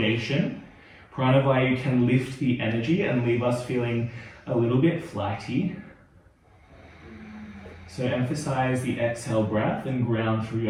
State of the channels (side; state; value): both; identical; correlation 1.00